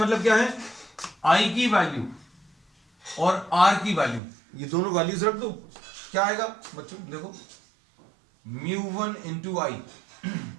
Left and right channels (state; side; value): drops out; left; at 4.2 s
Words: क्या है, आई की वैल्यू और आर की वैल्यू, ये दोनों वैल्यूज रख दो, क्या आएगा बच्चों देखो, μ1 इंटू आई,